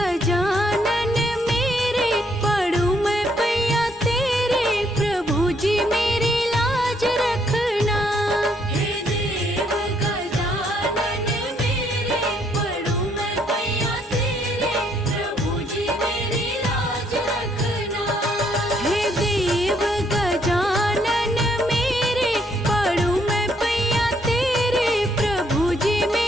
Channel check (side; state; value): both; normal; correlation 0.70